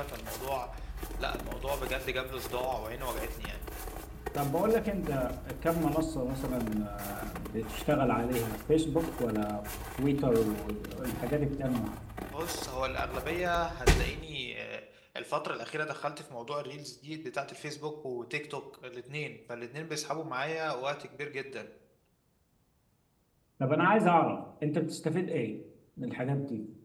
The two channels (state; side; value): identical; both; correlation 1.00